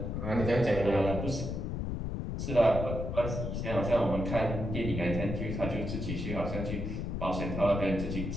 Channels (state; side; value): noise; left; rumble, 3 dB below the sound